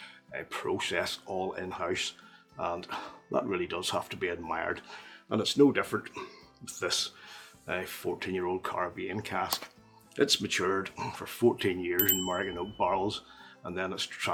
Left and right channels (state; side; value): identical; both; correlation 1.00